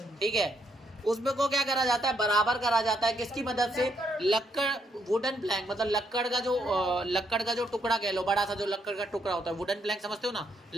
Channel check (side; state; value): both; normal; correlation 0.75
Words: ठीक है, उसमें को क्या करा जाता है, बराबर करा जाता है। किसकी मदद से, लक्कड़, वुडन प्लैंक मतलब लक्कड़ का जो टुकड़ा कह लो, बड़ा सा जो लक्कड़ का टुकड़ा होता है, वुडन प्लैंक समझते हो ना,